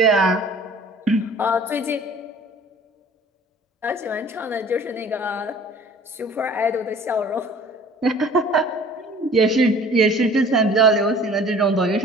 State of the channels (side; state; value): both; normal; correlation 0.49